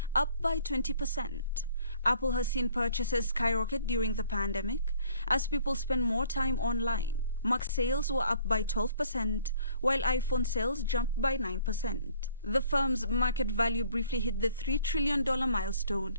up by 20%. Apple has seen purchases skyrocket during the pandemic as people spend more time online. Mac sales were up by 12%, while iPhone sales jumped by 9%. The firm's market value briefly hit the $3 trillion milestone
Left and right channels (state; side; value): inverted; both; correlation -0.57